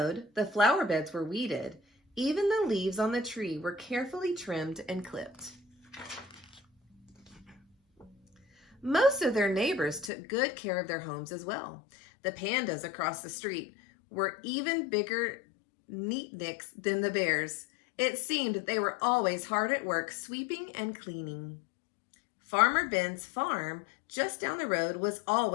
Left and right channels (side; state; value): right; drops out; at 10.1 s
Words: the flower beds were weeded, even the leaves on the tree were carefully trimmed and clipped. Most of their neighbors took good care of their homes as well. The pandas across the street were even bigger neatniks than the bears. It seemed they were always hard at work sweeping and cleaning. Farmer Ben's farm just down the road was